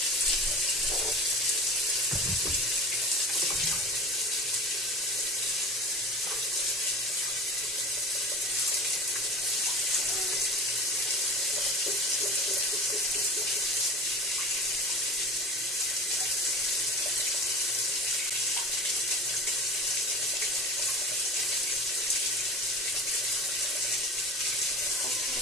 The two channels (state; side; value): normal; both; correlation 0.36